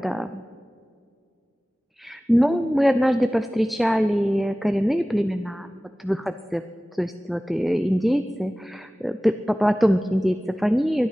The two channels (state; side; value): normal; both; correlation 0.97